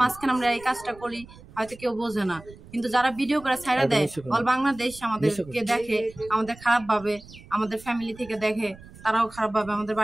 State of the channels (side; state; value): right; noise; rumble, 20 dB below the sound